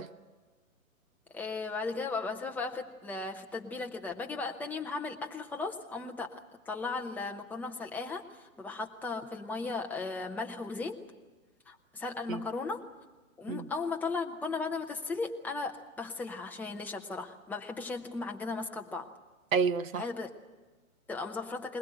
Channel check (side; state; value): both; normal; correlation 0.51